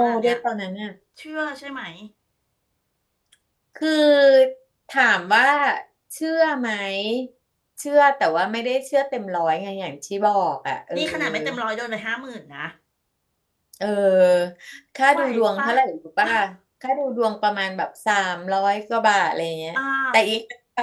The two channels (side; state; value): both; identical; correlation 1.00